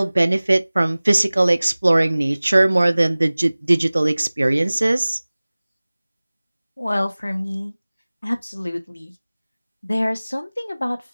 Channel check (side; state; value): both; inverted; correlation -0.99